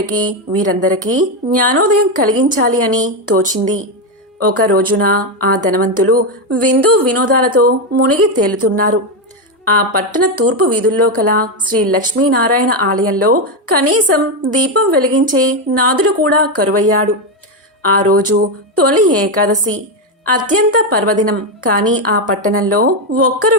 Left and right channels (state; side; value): normal; both; correlation 0.08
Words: వీరందరికీ జ్ఞానోదయం కలిగించాలి అని తోచింది. ఒక రోజున ఆ ధనవంతులు విందు వినోదాలతో మునిగి తేలుతున్నారు. ఆ పట్టణ తూర్పు వీధుల్లో కల శ్రీ లక్ష్మీనారాయణ ఆలయంలో కనీసం దీపం వెలిగించే నాదుడు కూడా కరువయ్యాడు. ఆ రోజు తొలి ఏకాదశి, అత్యంత పర్వదినం. కానీ ఆ పట్టణంలో ఒక్కరు